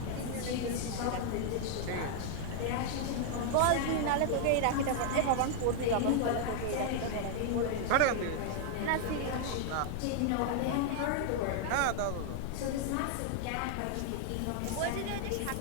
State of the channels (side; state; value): both; different; correlation 0.00